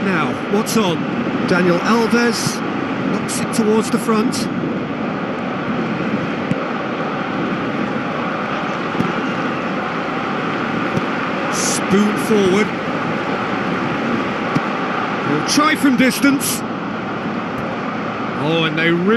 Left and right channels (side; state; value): both; identical; correlation 1.00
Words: now, what's on? Daniel Alves knocks it towards the front. Spoon forward. He'll try from distance. Oh, and they